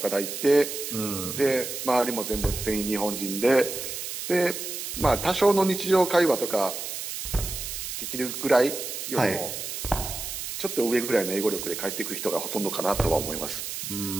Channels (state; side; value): noise; right; hiss, 6 dB below the sound